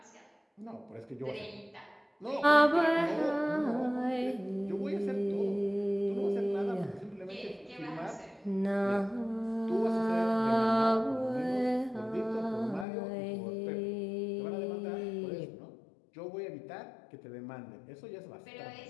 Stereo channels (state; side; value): drops out; right; at 12.9 s